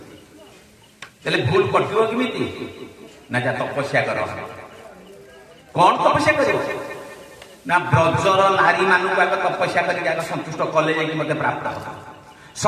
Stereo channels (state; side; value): identical; both; correlation 1.00